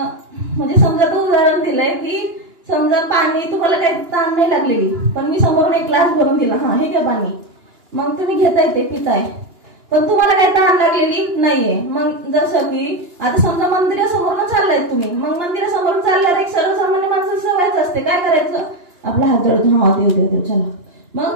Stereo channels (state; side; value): late; left; 2.9 ms